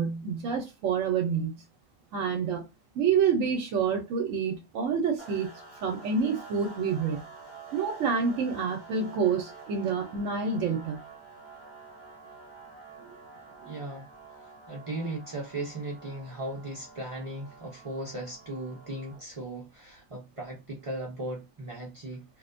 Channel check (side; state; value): left; quieter; 5.3 dB